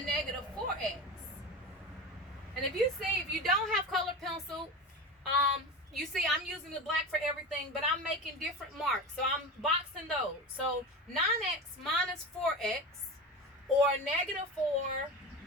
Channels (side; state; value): both; normal; correlation 0.26